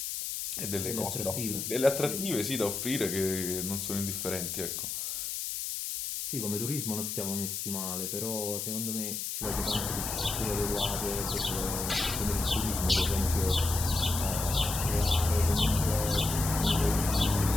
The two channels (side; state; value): left; noise; hiss, 4 dB below the sound